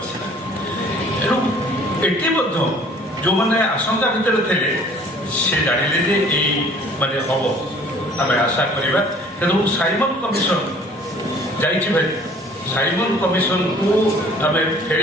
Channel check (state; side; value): normal; both; correlation 0.53